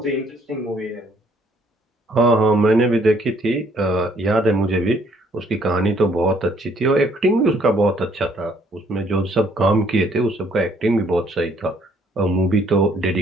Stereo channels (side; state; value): both; normal; correlation 0.64